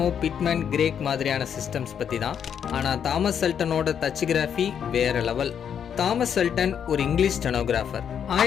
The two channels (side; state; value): right; quieter; 8.2 dB